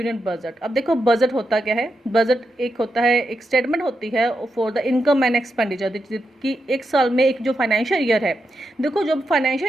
budget. अब देखो budget होता क्या है. Budget एक होता है, एक स्टेटमेंट होती है for the income and expenditure कि एक साल में एक जो फाइनेंशियल ईयर है. देखो जो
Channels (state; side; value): normal; both; correlation 0.86